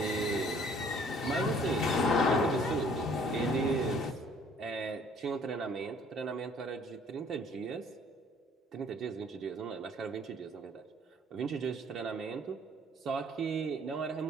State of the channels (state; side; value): normal; both; correlation 0.57